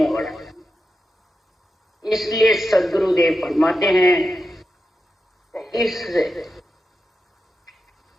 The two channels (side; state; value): both; normal; correlation 0.89